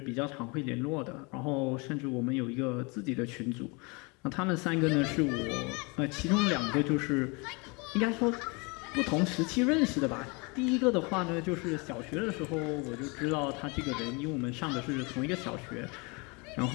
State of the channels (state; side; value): quieter; right; 29.3 dB